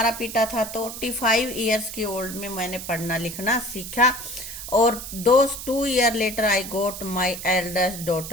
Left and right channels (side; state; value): right; noise; hiss, 9 dB below the sound